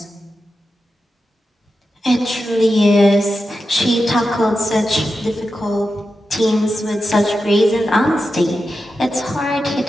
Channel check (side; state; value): both; normal; correlation 0.90